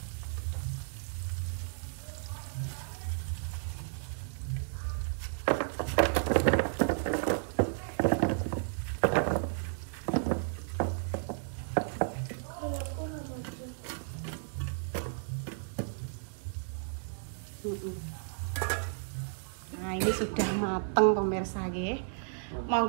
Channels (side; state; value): left; silent; digital silence